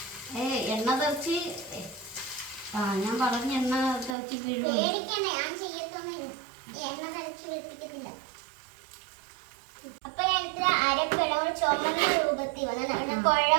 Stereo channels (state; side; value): drops out; left; at 4.2 s